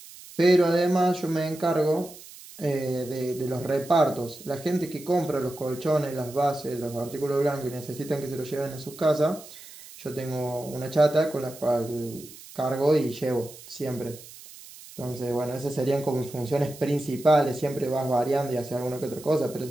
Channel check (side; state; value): right; noise; hiss, 18 dB below the sound